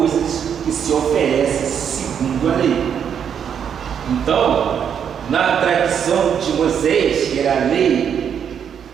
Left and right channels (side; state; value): left; quieter; 8.0 dB